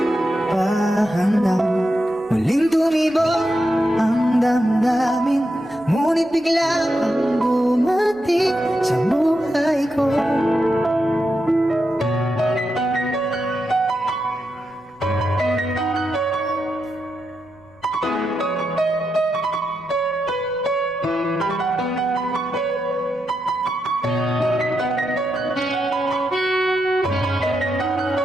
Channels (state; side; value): noise; right; rumble, 30 dB below the sound